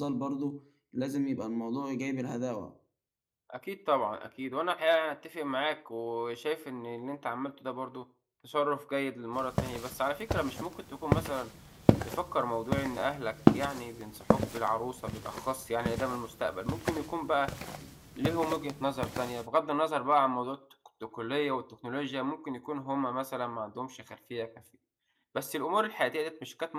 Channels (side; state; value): both; identical; correlation 1.00